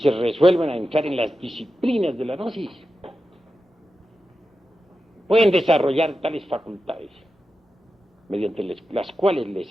resuelven a entrar en las disciplinas de la gnosis, pueden desarrollar tales facultades, mediante las cuales les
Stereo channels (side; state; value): both; normal; correlation 0.91